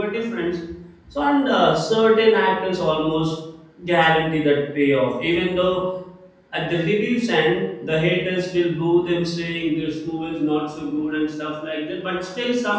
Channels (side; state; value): both; identical; correlation 1.00